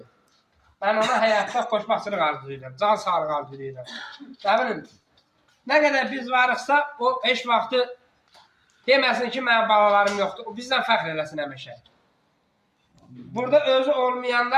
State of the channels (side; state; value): both; identical; correlation 1.00